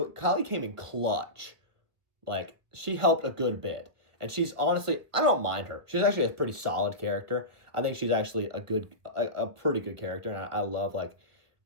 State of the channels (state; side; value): late; left; 1.7 ms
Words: Kali came in clutch. Like, she helped a good bit. And she's honestly, I don't mind her. She's actually a pretty solid character. I think she's actually a pretty good character, and I love